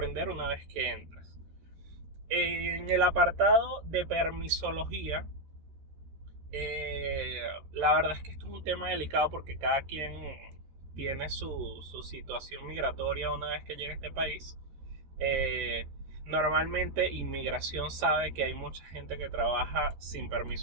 una vez que entras. En el apartado de permisología, la verdad es que esto es un tema delicado porque cada quien tiene su situación migratoria una vez que llega a este país. Normalmente inmigración sabe que hay mucha gente que trabaja sin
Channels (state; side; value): late; left; 13 ms